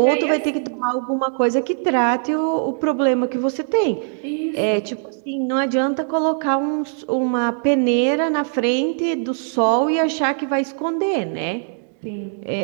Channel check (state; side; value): silent; left; digital silence